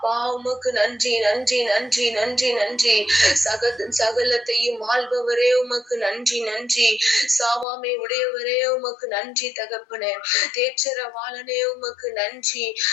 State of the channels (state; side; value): drops out; right; at 7.7 s